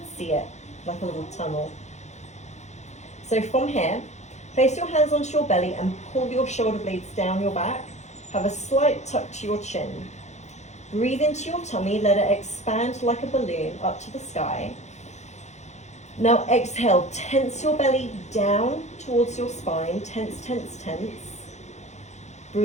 see it like a little tunnel. So from here, place your hands onto your belly and pull your shoulder blades down your back. Have a slight tuck to your chin. Breathe into your tummy, let it expand like a balloon up to the sky. Now exhale, tense your belly down towards your spine, tense, tense, tense.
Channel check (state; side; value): late; right; 0.33 ms